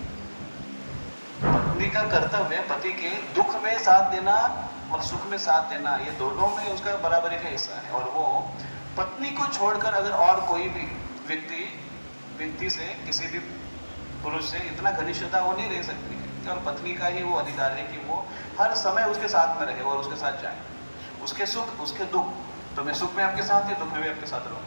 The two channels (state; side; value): inverted; both; correlation -1.00